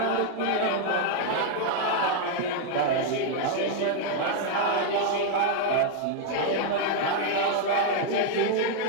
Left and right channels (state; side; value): different; both; correlation 0.00